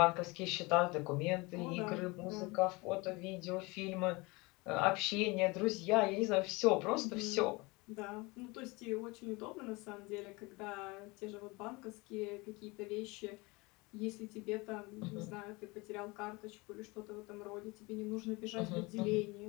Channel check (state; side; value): quieter; right; 25.0 dB